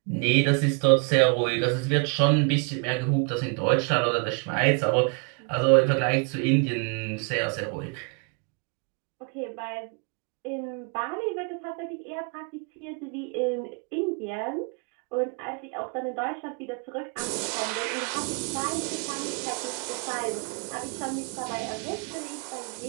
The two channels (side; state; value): left; quieter; 35.4 dB